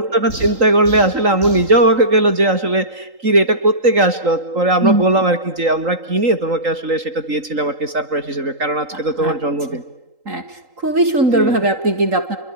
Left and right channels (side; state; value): left; late; 3.8 ms